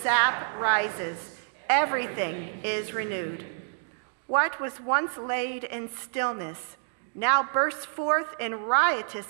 sap rises, everything is renewed. What was once laid in stillness now bursts forth in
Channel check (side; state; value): left; silent; digital silence